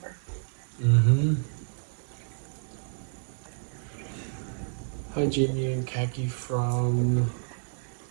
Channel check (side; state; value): left; silent; 58 dB below the other